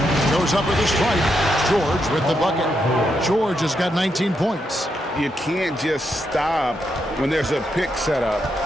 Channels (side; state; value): both; normal; correlation 0.81